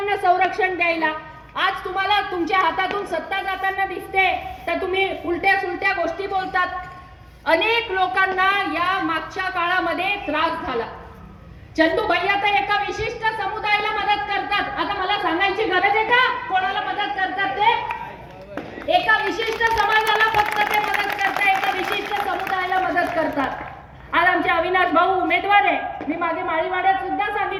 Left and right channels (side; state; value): both; identical; correlation 1.00